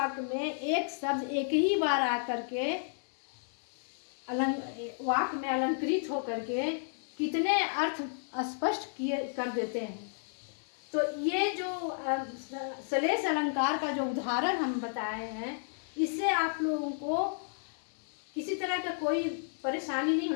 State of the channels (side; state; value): right; silent; digital silence